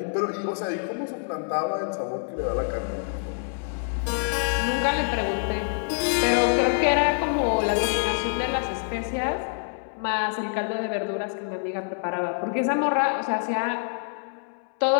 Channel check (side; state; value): right; silent; digital silence